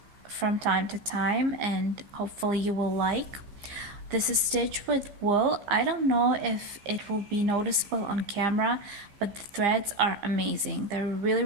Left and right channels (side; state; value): left; late; 15 ms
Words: from time to time, and hopefully you will like. This is stitched with wool. I don't know if it will be noticeable on camera, but the threads are amazing. They're